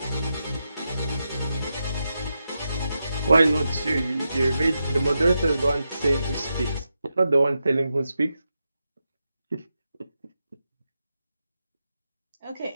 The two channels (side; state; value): both; inverted; correlation -0.87